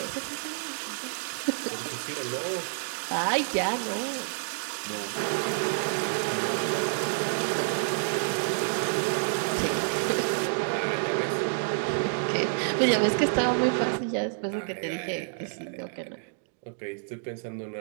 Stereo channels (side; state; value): left; silent; digital silence